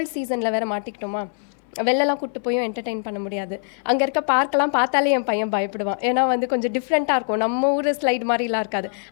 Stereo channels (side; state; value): right; silent; digital silence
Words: சீசனில் வேறு மாட்டிக்கிட்டோமா, வெளிலலாம் கூப்பிட்டு போயும் என்டர்டெயின் பண்ண முடியாது. அங்கே இருக்க பார்க்கெலாம் பார்த்தாலே என் பையன் பயப்படுவான். ஏன்னா வந்து கொஞ்சம் டிஃப்ரெண்ட்டாக இருக்கும், நம்ம ஊர் ஸ்லைட் மாதிரிலாம் இருக்காது.